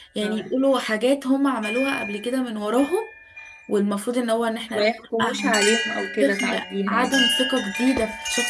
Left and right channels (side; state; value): both; identical; correlation 1.00